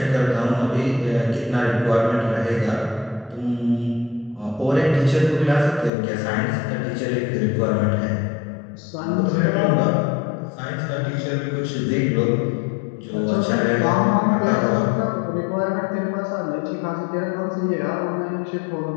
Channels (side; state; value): right; drops out; at 5.9 s